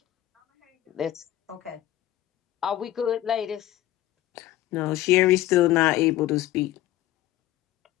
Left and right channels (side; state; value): right; quieter; 14.3 dB